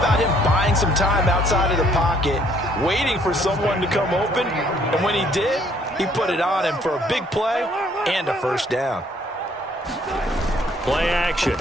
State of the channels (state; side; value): normal; both; correlation 0.63